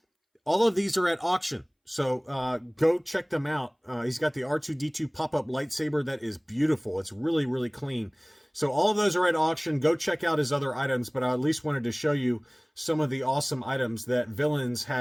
All of these are at auction. So go check them out. He's got the R2-D2 pop-up lightsaber that is beautiful. It's really, really clean. So all of those are at auction. Go check out his other items, but I at least wanted to show you some of the awesome items that Villains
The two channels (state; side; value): identical; both; correlation 1.00